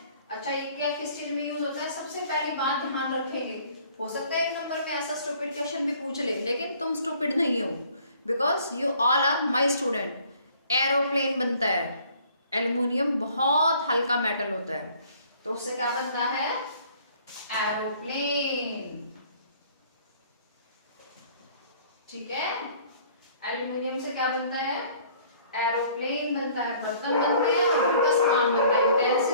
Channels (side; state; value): both; inverted; correlation -0.56